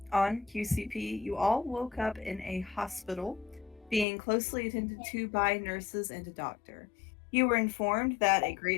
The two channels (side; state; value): right; drops out; at 4.0 s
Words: on QCP, you all woke up in a hospital, being closely attended to by nurses and a doctor. You were informed that a